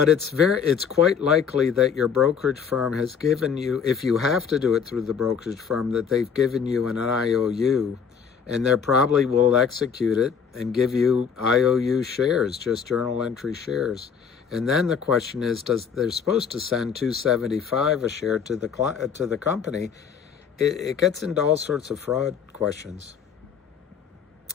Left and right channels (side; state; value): right; quieter; 6.8 dB